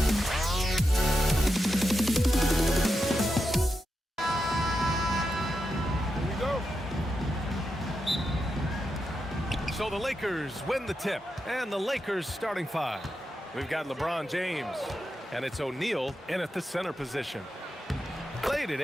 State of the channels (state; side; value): normal; both; correlation 0.87